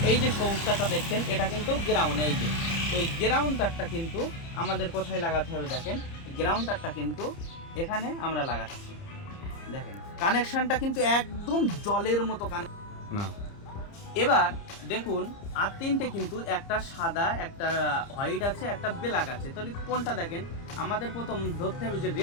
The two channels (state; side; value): late; right; 30 ms